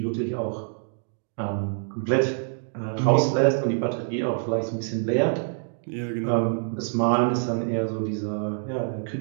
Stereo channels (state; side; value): silent; left; digital silence